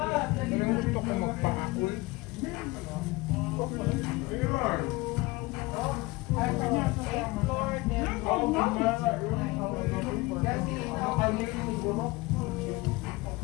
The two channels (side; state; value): right; quieter; 22.3 dB